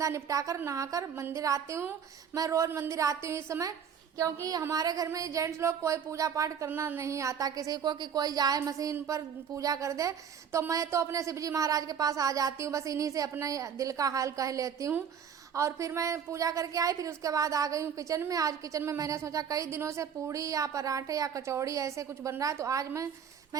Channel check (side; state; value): left; quieter; 7.7 dB